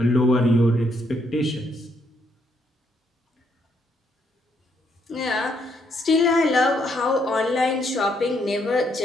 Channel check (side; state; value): both; normal; correlation 0.74